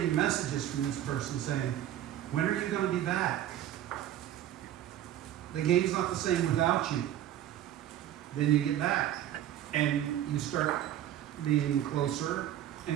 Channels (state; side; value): quieter; left; 11.9 dB